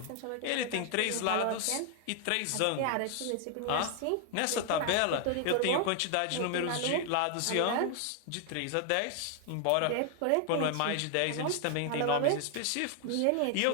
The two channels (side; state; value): both; different; correlation 0.00